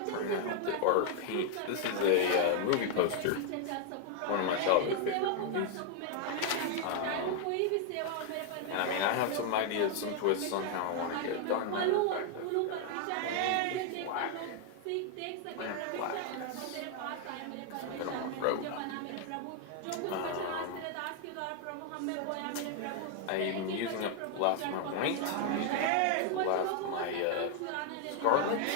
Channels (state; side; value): different; both; correlation 0.00